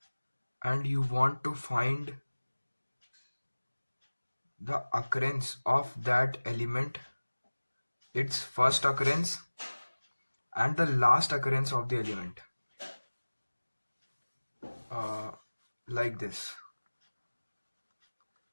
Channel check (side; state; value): both; inverted; correlation -1.00